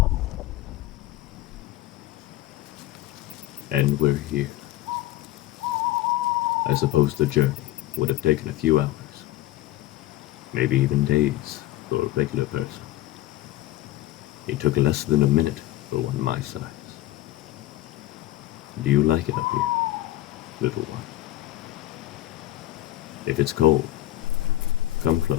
And we're here. I suppose the journey would have taken a few hours, maybe even days for a regular person. It took less than a minute for one my size. Do you like it up here, little one? If it's cold, come close.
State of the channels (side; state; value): right; quieter; 15.2 dB